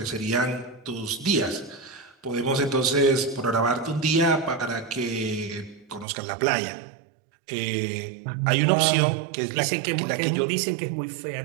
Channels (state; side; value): drops out; left; at 6.1 s